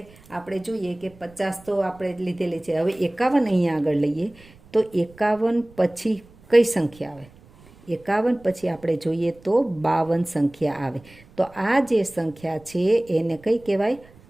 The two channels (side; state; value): right; noise; rumble, 25 dB below the sound